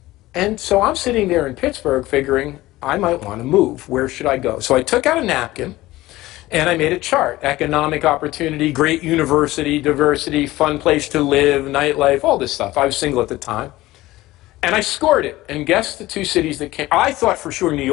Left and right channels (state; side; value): quieter; right; 17.6 dB